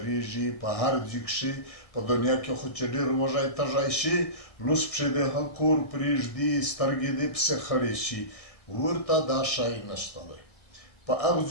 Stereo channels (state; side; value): late; right; 1.6 ms